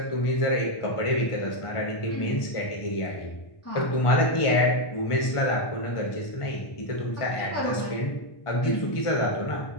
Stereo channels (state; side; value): late; right; 1.5 ms